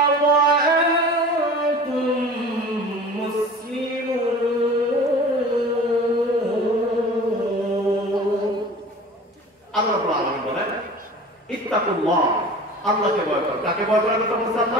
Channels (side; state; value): both; normal; correlation 0.40